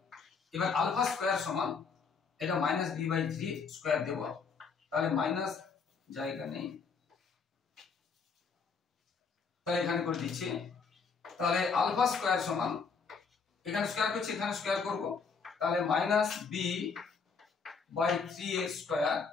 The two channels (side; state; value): right; quieter; 5.3 dB